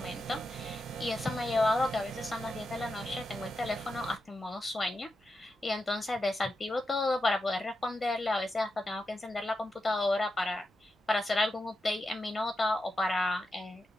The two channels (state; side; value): normal; both; correlation 0.88